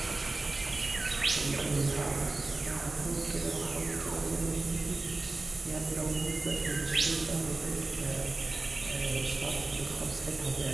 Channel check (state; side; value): quieter; left; 3.3 dB